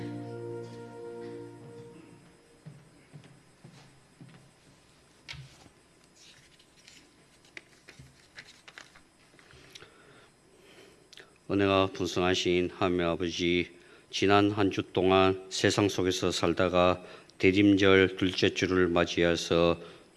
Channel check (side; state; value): both; identical; correlation 1.00